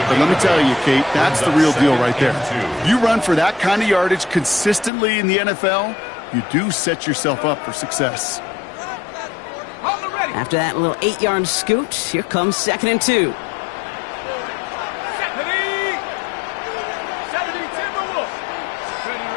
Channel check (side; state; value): right; drops out; at 4.9 s